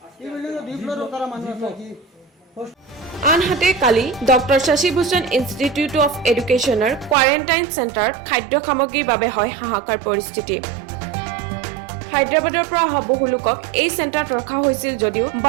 এই বিল্ডিংও 2 ফ্লোরও তারা মানুষ আছে। আনহাতে কালি doctor Shashi Bhushan institute of এডুকেশ্যনৰ কোৱাৰেণ্টাইন চেণ্টাৰত খাদ্য সামগ্ৰীৰ বাবে হয় হাহাকাৰ পৰিস্থিতি। হায়দৰাবাদৰ পৰা অহা বহু লোকক এই চেণ্টাৰত ৰখা হৈছিল যদিও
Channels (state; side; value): drops out; left; at 7.2 s